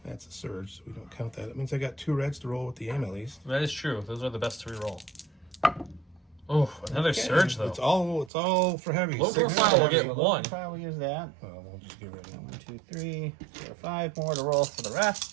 That's a surge, so we don't count that. That means I got 2 reds to roll with the aim at least. that is true. Those are the best to reroll. Oh, another surge though. It's all for heavy. Low 6 profile will heavy. get 1. We'll use that. Oh, we'll just get rid of 1, it. 2, 3, 4, 5 more to roll for the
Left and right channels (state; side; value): drops out; left; at 8.3 s